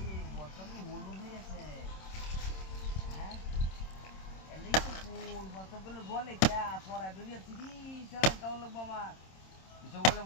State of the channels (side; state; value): right; late; 26 ms